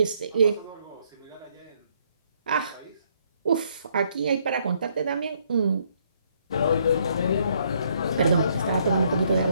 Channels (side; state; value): both; inverted; correlation -0.69